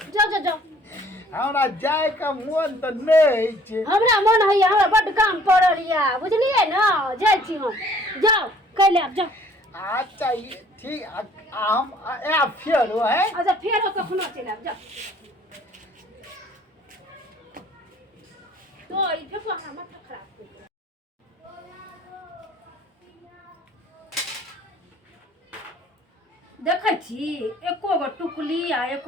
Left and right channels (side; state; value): both; normal; correlation 0.57